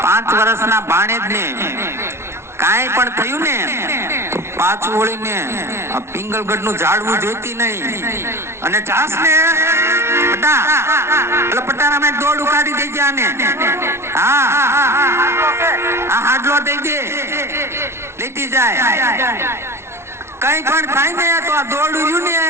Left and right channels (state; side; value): late; left; 0.13 ms